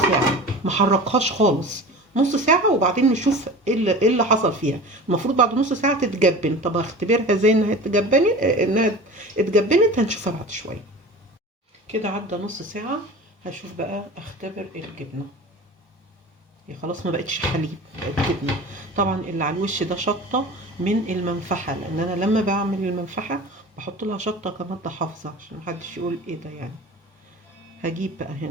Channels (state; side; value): normal; both; correlation 0.36